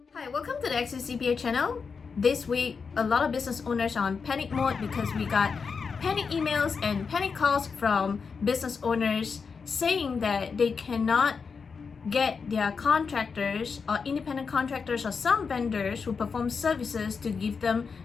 welcome to the XCPA channel. This week, a lot of business owners are on panic mode because we got panic emails and panic calls from business owners saying that they cannot get their contractors or independent contractors or some vendors who perform services to give them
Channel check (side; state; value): right; quieter; 5.4 dB